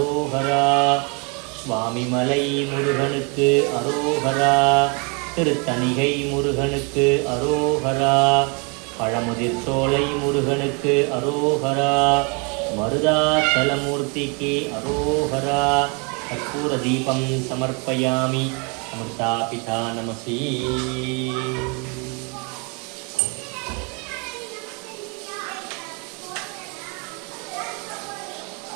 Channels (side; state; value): left; quieter; 33.6 dB